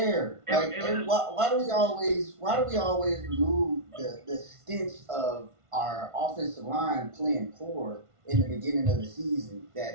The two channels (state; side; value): late; left; 1.5 ms